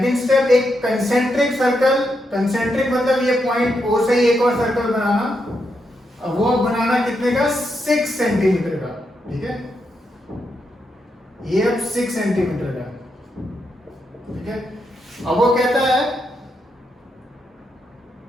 स्टेप एक कंसेंट्रिक सर्कल, कंसेंट्रिक मतलब ये पॉइंट O से ही एक और सर्कल बनाना, अब वो बनाना कितने का, 6 सेंटीमीटर का, ठीक है। ये अब 6 सेंटीमीटर का, ठीक है। अब वो कहता है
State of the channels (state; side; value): normal; both; correlation 0.82